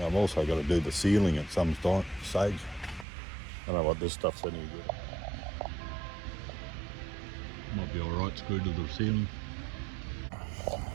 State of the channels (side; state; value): left; drops out; at 3.1 s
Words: also got to do the ceiling at some stage. I don't know what this stuff's any good. Might be alright screwed to the ceiling.